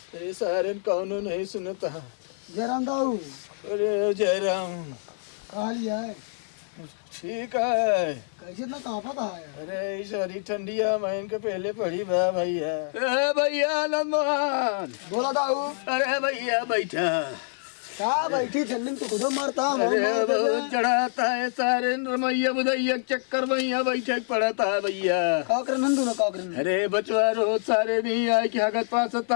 अरे सारे कौन नहीं सुनता। जयराम दाऊ अरे जयराम कहा लिया है ठीक है। कैसे इतना कांपा कहा है? अरे सारी ठंडिया मैं इनके पहले पड़ी बा भैया। अरे भैया नंदमान बोला दाऊ अरे भैया बैठा। क्या बैठी ठंडी में तो खुद मरता अरे बहुत चढ़ाता है सारे रमैया बुधैया चक्कर भैया बैठा पड़ता है भैया। काकर नंदू ना काकर अरे बचवा रोज सारे नहीं आए कि हगत पास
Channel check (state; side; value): silent; right; digital silence